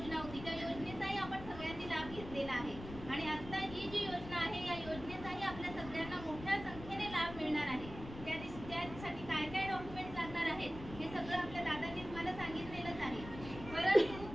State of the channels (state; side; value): noise; left; rumble, 12 dB below the sound